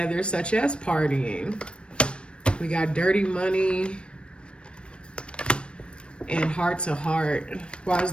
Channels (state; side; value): late; right; 0.057 ms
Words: such as partying. We got dirty money and heart to heart. Why is